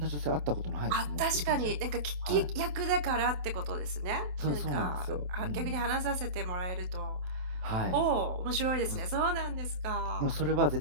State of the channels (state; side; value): late; left; 27 ms